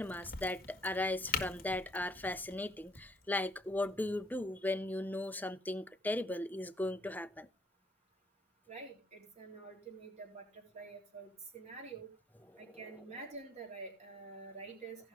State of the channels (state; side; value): normal; both; correlation 0.65